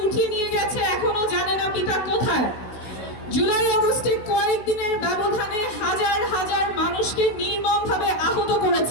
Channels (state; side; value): late; right; 16 ms